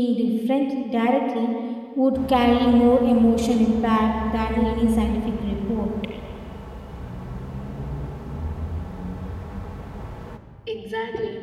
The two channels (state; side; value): identical; both; correlation 1.00